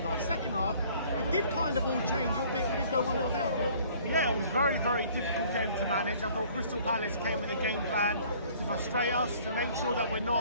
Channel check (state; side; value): inverted; both; correlation -0.55